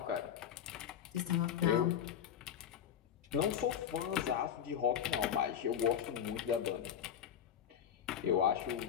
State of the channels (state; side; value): quieter; right; 9.2 dB